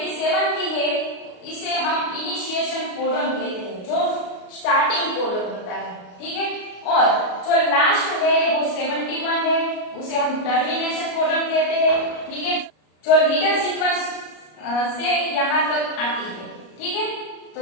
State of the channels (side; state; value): right; late; 33 ms